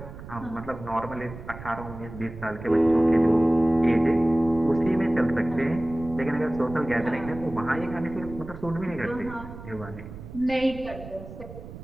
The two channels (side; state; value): right; noise; rumble, 13 dB below the sound